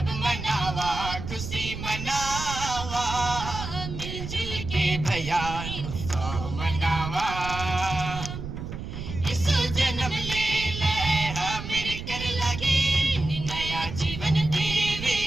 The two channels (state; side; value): noise; right; rumble, 7 dB below the sound